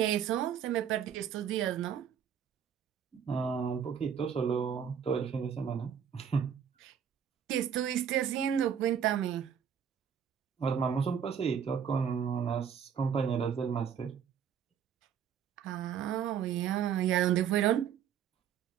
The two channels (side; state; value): left; quieter; 8.2 dB